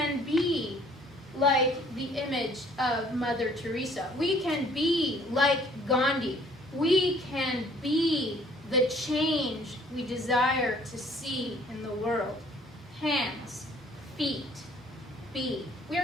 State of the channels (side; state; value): both; normal; correlation 0.58